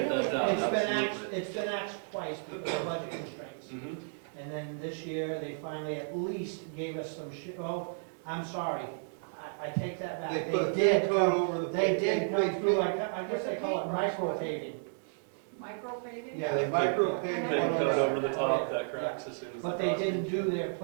that down. Absolutely. It's been axed twice because of budget constraints. Mhm. And then this year, they finally at least gave us some I'm sorry, I take that back. They put a thin coat over the. They did come they- through, I guess they call it micro paving. Micro paving? Yeah, they micro Thin paved Thin one coat on over the the, top that cracks as soon as. But the they frost didn't hits. do their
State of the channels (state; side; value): silent; left; 56 dB below the other